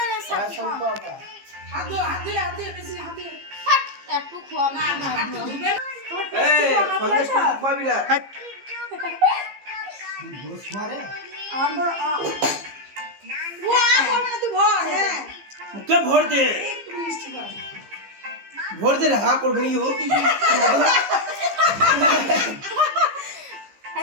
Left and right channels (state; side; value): late; left; 15 ms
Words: লে সব হাত দিয়ে বেশি হাত দিয়ে একটু খোয়া না ভাত ধুবে না এই সন্দেশ তো পাবি না গোস মারে আমার ও করবে না তুই ভর হ্যাঁ মুখে ভর দে একটু মিষ্টি খাও ভর দে হা করবি নি ও